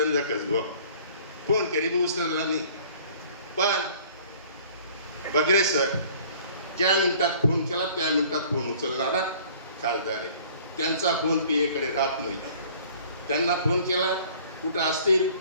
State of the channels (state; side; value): inverted; both; correlation -0.52